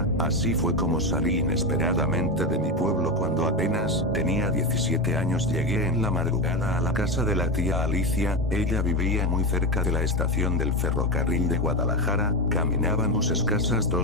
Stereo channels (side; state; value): both; normal; correlation 0.16